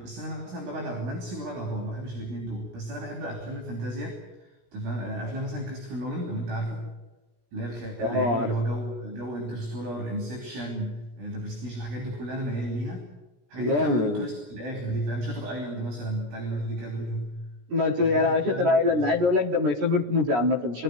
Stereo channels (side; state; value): left; late; 17 ms